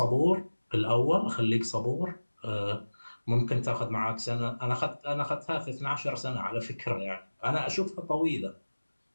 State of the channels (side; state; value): both; inverted; correlation -1.00